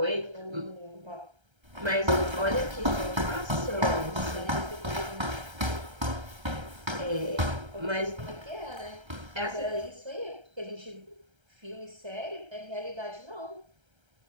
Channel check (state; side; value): late; left; 1.3 ms